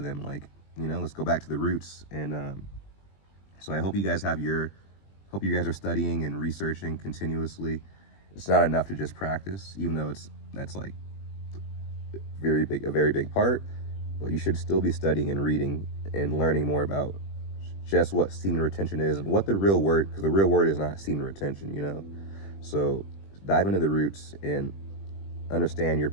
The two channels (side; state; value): right; late; 20 ms